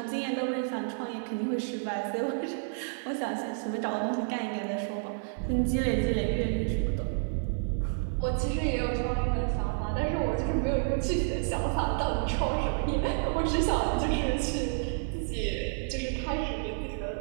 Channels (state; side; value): silent; left; digital silence